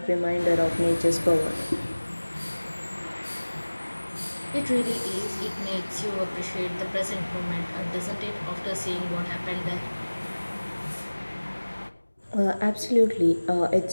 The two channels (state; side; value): inverted; both; correlation -1.00